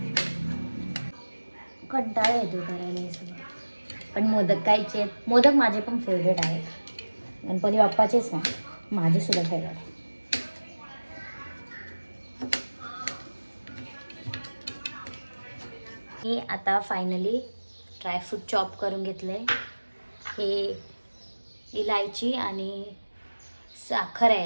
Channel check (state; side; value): inverted; both; correlation -1.00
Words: कंटाळा येतो करायला हे सगळं, पण मोदक खायचे आहेत. मोदक माझे पण फेवरेट आहेत, गणपती बाप्पाचेच नाही, माझे सुद्धा फेवरेट आहे. हे आता फायनली ड्रायफ्रूट चॉप करून घेतले. हे इलायची आणि साखर आहे